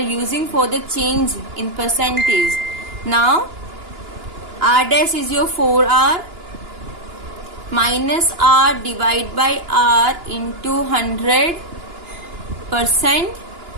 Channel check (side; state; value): left; late; 2.9 ms